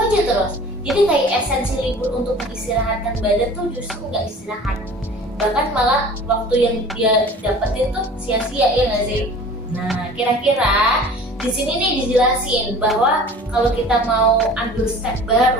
terus. Jadi kayak esensi libur untuk mengistirahatkan badan tuh justru nggak istirahat, bahkan malah waktu yang dia dapetin tuh sia-sia, ya nggak sih? Nah, kira-kira di sini nih dijelasin bahwa kalau kita mau ambil step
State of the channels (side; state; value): both; normal; correlation 0.44